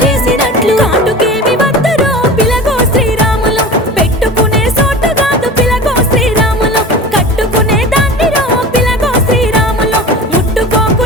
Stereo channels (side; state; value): both; normal; correlation 0.34